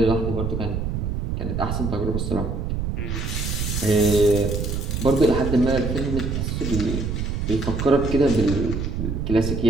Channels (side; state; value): right; noise; rumble, 2 dB below the sound